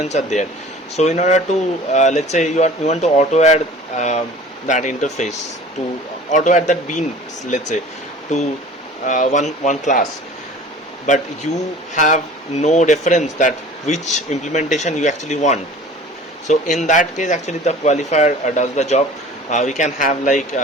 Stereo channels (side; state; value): both; normal; correlation 0.44